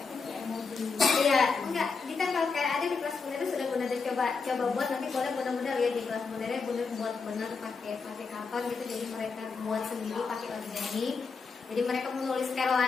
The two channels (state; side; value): quieter; right; 4.8 dB